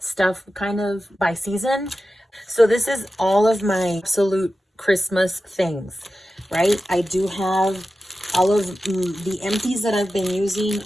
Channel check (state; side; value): normal; both; correlation 0.92